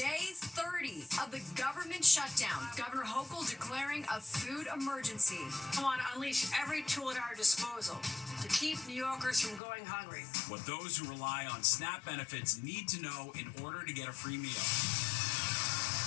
30 of the government shutdown. Governor Hochul declaring a food emergency. We want to unleash every tool at our disposal to keep New Yorkers from going hungry. What those who rely on SNAP benefits need to know in order to get a free meal.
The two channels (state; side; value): drops out; right; at 9.6 s